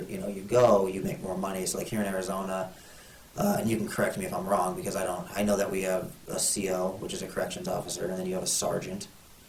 you go, you make more money. So like here in Arizona, and you can correct me if I'm wrong because I know that we have a CO, which is a corrections officer, and then you have a sergeant,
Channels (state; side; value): identical; both; correlation 1.00